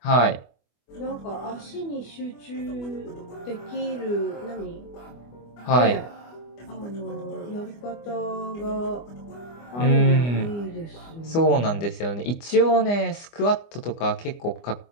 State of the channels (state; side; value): late; right; 24 ms